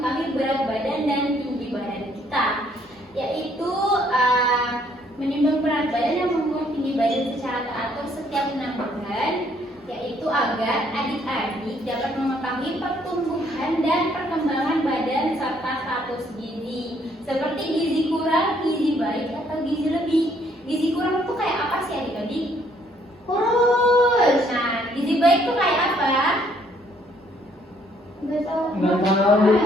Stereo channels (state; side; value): normal; both; correlation 0.66